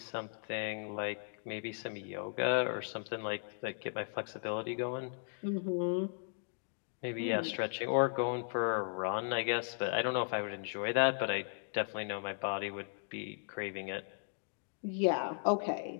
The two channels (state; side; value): silent; right; digital silence